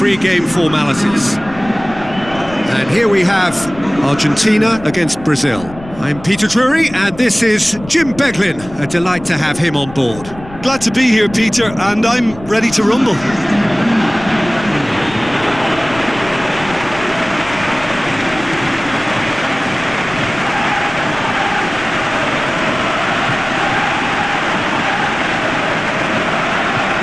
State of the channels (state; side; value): noise; left; rumble, 17 dB below the sound